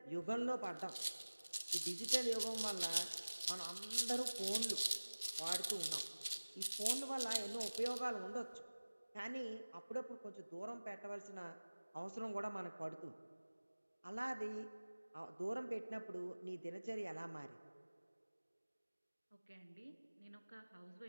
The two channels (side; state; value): both; inverted; correlation -1.00